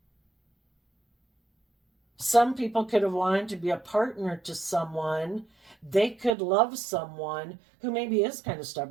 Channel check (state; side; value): drops out; left; at 6.4 s